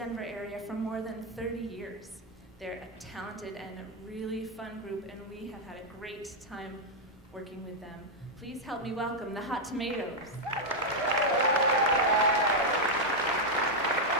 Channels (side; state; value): both; normal; correlation -0.01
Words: area for more than 30 years. They're a talented and a really fun group, and we have had a great time working with them. Please help me welcome the Hot Tomatoes.